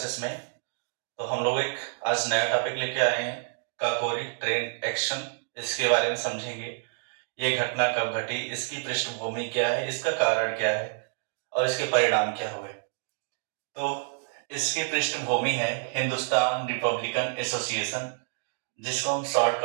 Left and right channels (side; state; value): left; silent; digital silence